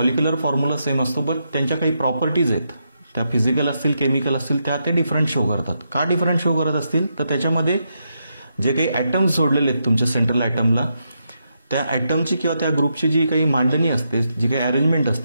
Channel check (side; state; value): both; inverted; correlation -0.82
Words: फॉर्म्युला सेम असतो, बट त्यांच्या काही प्रॉपर्टीज आहेत त्या फिजिकल असतील, केमिकल असतील, त्या ते डिफरंट शो करतात. का डिफरंट शो करत असतील? तर त्याच्यामध्ये जे काही ॲटम्स जोडलेले आहेत तुमच्या सेंट्रल ॲटमला त्या ॲटमची किंवा त्या ग्रुपची जी काही मांडणी असते, जी काही अरेंजमेंट